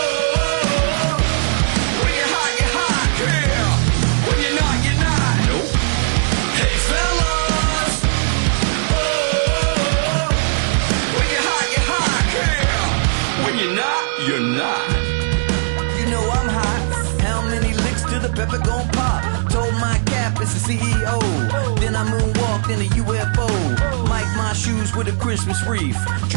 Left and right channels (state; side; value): silent; left; digital silence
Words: when you're hot, girl. When you're not, you're not. Nope. Hey fellas, oh, when you're hot, girl. When you're not, you're not. You know I'm hot. How many licks till the pepper gon' pop? Told my cap it's the CEO. Then I moonwalked in a UFO. Mic my shoes with a Christmas wreath.